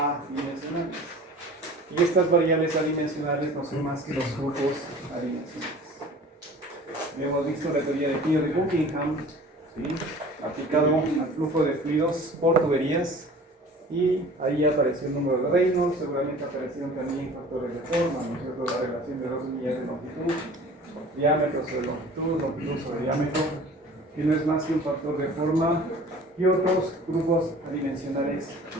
Y estas variables adimensionales no son más que los flujos adimensionales. Hemos visto la teoría de Peter de Buckingham, ¿sí?, aplicado al flujo de fluidos por tuberías, y ahí apareció el número de Reynolds, seguramente aparecieron también factores de forma, ¿no es cierto?, la relación de dos unidades de longitud, diámetro sobre longitud, longitud sobre diámetro, que no es más que un factor de forma, y otros grupos adimensionales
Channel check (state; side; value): normal; both; correlation 0.44